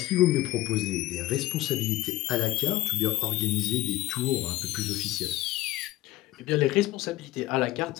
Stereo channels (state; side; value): quieter; right; 16.7 dB